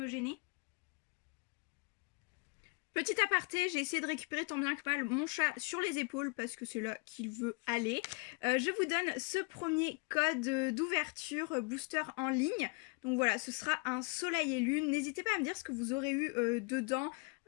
gêner ? Petit aparté, j'ai essayé de récupérer tant bien que mal mon chat sur les épaules parce que c'est là qu'il veut aller. Je vous donne ce premier code d'ouverture booster en ligne. Donc voilà, ce sera un Soleil et Lune. N'hésitez pas à me dire ce que vous aurez eu dedans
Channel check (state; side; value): quieter; right; 31.3 dB